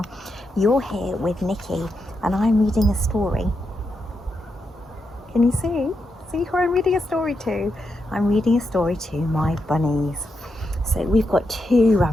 You're here with Nicky and I'm reading a story. Can you see? See who I'm reading a story to? I'm reading a story to my bunnies. So we've got two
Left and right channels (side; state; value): both; normal; correlation 0.84